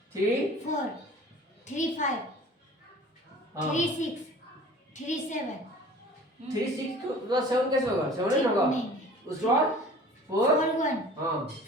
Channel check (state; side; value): normal; both; correlation 0.45